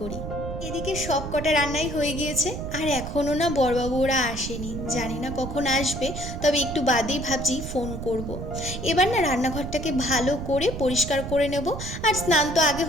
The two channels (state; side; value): noise; right; rumble, 7 dB below the sound